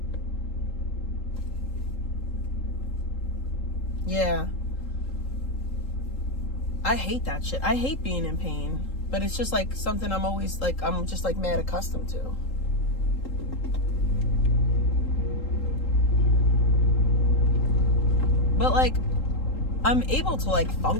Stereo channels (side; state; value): right; late; 3.8 ms